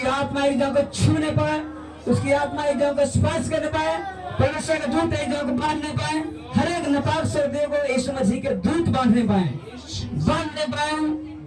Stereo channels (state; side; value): identical; both; correlation 1.00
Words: आत्मा एक जन को छूने पाए, उसकी आत्मा एक जन को स्पर्श करने पाए, परमेश्वर के दूत एक जन को बांधने पाए, हर एक नापाक शब्द को यीशु मसीह के दूत बांधने पाए।